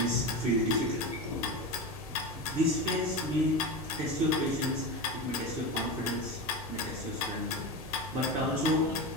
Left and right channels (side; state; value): both; normal; correlation 0.22